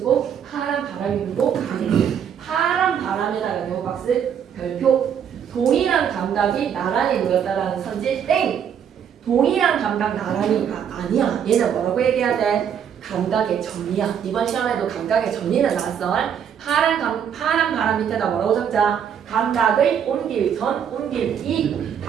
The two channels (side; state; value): left; quieter; 8.3 dB